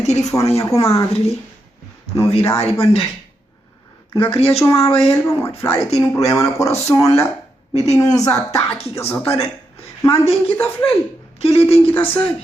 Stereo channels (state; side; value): normal; both; correlation 0.83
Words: telefone, minha comadre ali. Não virar e bandei. Não queria chamar ele para morrer. Falei, tem um problema no coração lá. Me tem uns ataques que eu só tô dando. Mas tem que estar falando. Que ele tem que estar